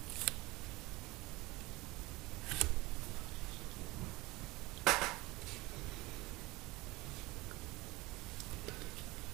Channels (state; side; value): quieter; left; 21.8 dB